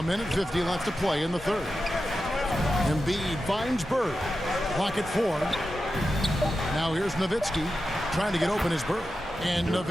minute 50 left to play in the third. Embiid finds Bird. Clock at 4. Now here's Nowitzki trying to get open his Bird. And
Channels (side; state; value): both; normal; correlation 0.91